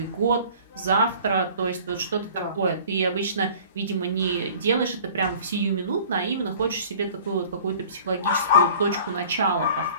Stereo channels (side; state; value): both; inverted; correlation -0.48